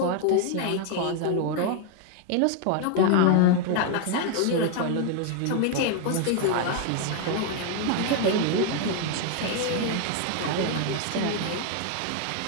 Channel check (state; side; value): different; both; correlation 0.01